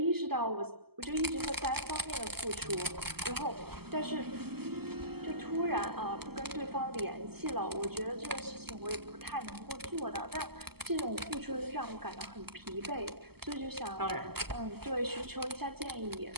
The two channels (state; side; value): late; left; 0.96 ms